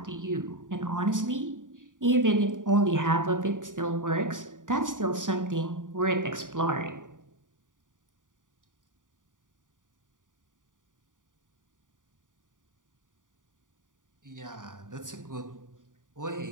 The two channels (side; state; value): left; late; 0.88 ms